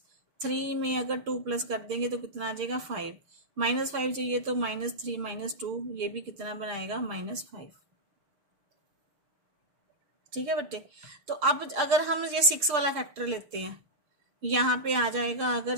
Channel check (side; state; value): left; late; 6.7 ms